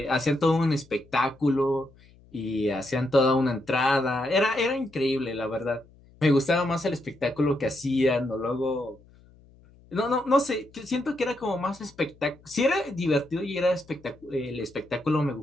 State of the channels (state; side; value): noise; left; hum, 27 dB below the sound